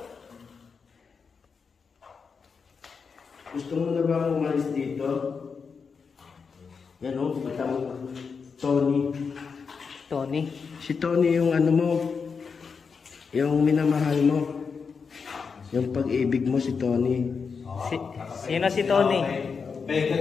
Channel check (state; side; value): quieter; right; 5.5 dB